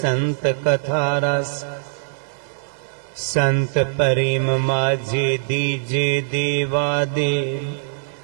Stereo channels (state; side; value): silent; left; digital silence